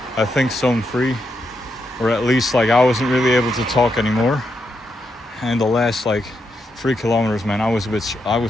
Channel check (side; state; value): both; normal; correlation 0.82